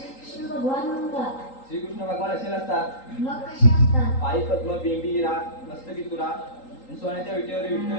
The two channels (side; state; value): right; late; 3.8 ms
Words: भगवान म्हणतात. श्रीकृष्ण भगवान असे नसतात. मग कसे असतात? पायी पद्म बेंबी राग मस्तकी तुरा आणि सोन्याच्या विटेवर विठ्ठल